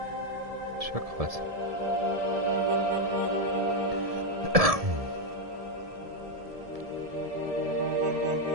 Ist ja krass.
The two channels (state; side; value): late; left; 1.7 ms